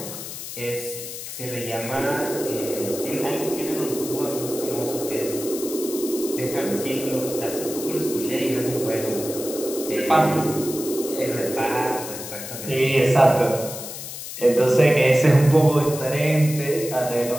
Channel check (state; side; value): noise; left; hiss, 9 dB below the sound